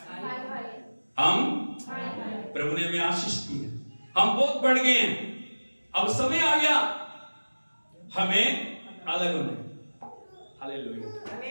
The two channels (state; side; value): inverted; both; correlation -1.00